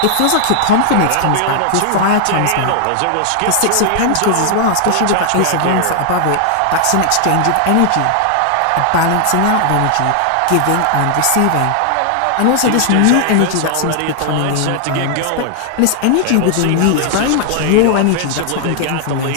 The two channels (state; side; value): different; both; correlation 0.00